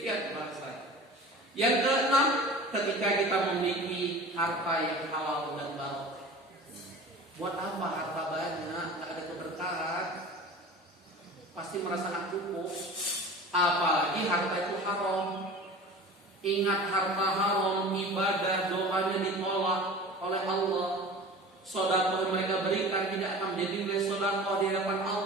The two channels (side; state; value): both; normal; correlation 0.38